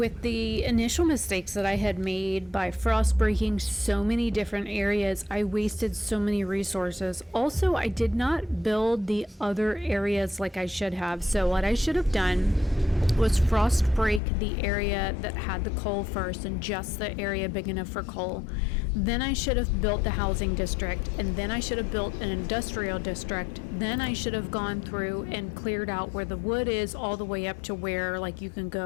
the initial mistakes that I had made by frost breaking so many different areas, I wasted so many resources. Also, I did not build the other areas like I should have. So what I should have done was frost break the area that had the coal first, and just the area big enough for coal. Then I should have built the housing district, and then I should have built an industrial district. Then I should have gone through and cleared out where the wood is all the way up to where like you can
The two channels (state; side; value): drops out; right; at 14.2 s